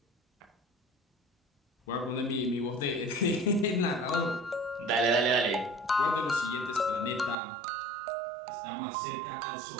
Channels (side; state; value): left; drops out; at 7.4 s